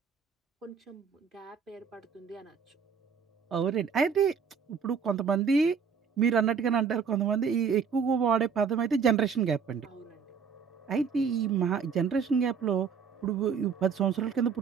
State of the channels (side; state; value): left; quieter; 6.2 dB